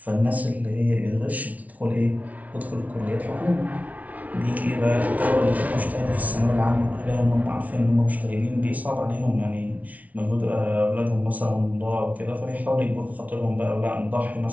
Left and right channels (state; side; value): late; left; 0.071 ms